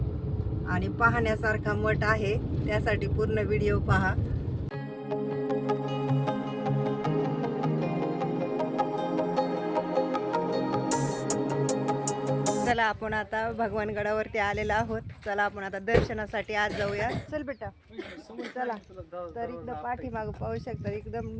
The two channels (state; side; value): identical; both; correlation 1.00